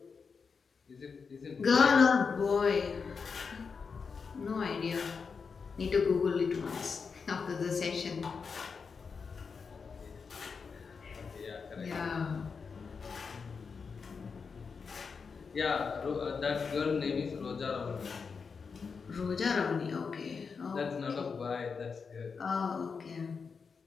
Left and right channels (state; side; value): quieter; right; 5.4 dB